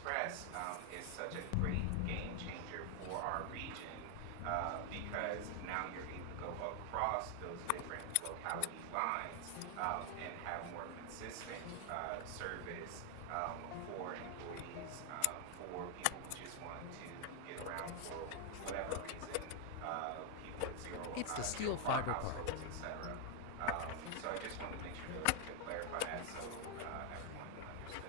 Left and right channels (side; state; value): both; different; correlation 0.00